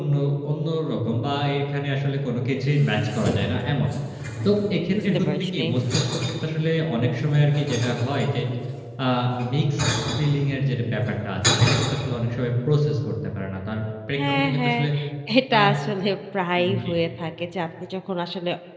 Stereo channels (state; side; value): identical; both; correlation 1.00